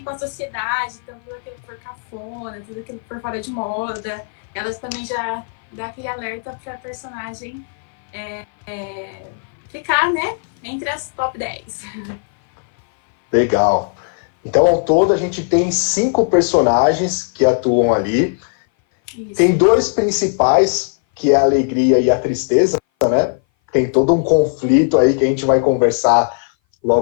com a sociedade, então tudo aquilo que for cafona, tudo aquilo que for fora de moda, ela também já dá aquele alerta para a personagem ficar, né, entre as top 10. Legal. Então, ao todo, a gente tem 5 personagens que atuam ali. Isso. Tem 2 principais, que é a alegria e a tristeza, né? Tem todo um conflito aí que a gente vai conversar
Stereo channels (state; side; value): silent; right; 59 dB below the other